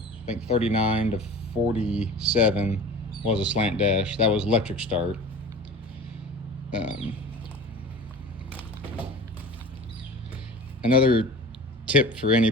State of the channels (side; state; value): both; normal; correlation 0.37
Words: I think 39 to 47 was a slant dash. That was electric start. Another tip for